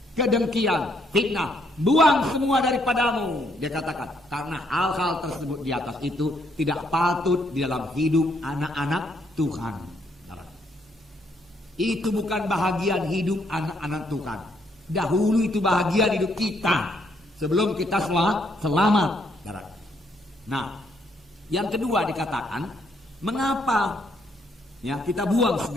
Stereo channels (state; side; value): normal; both; correlation 0.72